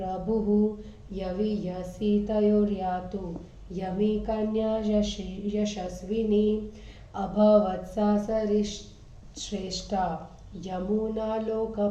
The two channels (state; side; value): identical; both; correlation 1.00